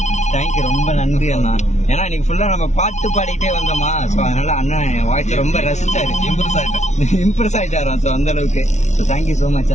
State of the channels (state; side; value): late; right; 0.33 ms